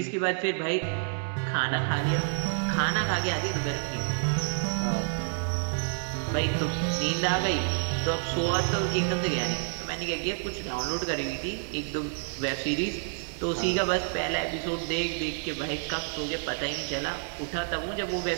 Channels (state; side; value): silent; left; digital silence